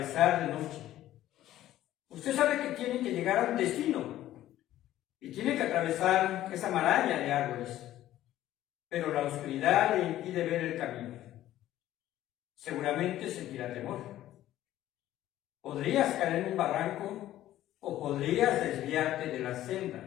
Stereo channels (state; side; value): quieter; right; 13.7 dB